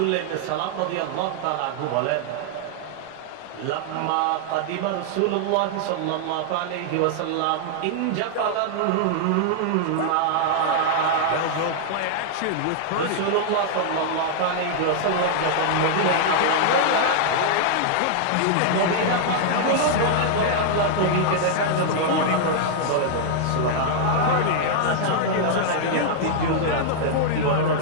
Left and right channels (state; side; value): different; both; correlation -0.01